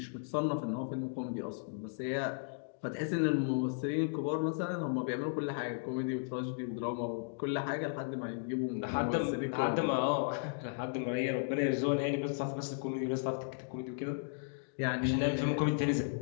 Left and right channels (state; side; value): silent; right; digital silence